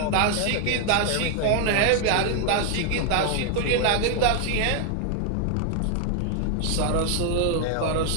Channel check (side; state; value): both; different; correlation 0.00